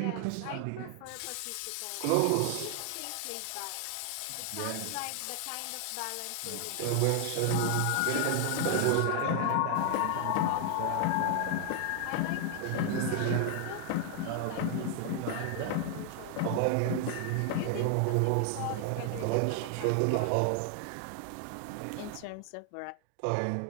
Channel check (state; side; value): different; both; correlation 0.00